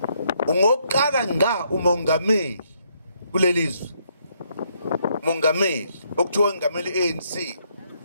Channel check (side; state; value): both; inverted; correlation -0.72